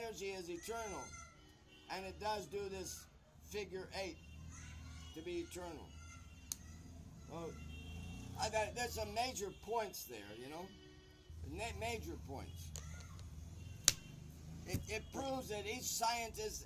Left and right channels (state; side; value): identical; both; correlation 1.00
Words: is eternal, and it does do this figure 8 to be eternal. Well, there's some major points there, major points. It proves that each scientist